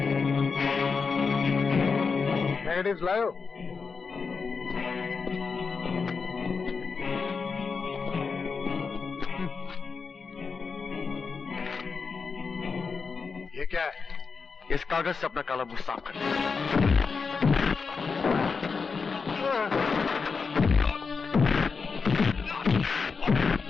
नेगेटिव्स लाओ। ये क्या है? इस कागज से अपना काला मुंह साफ कर।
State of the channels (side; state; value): right; quieter; 5.1 dB